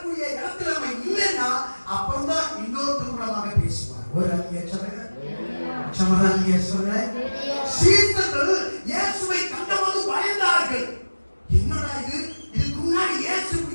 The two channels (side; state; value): both; inverted; correlation -1.00